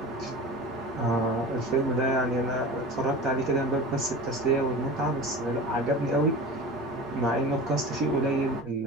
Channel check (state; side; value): normal; both; correlation 0.33